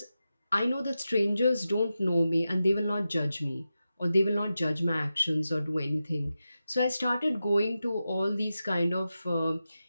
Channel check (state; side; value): inverted; both; correlation -0.91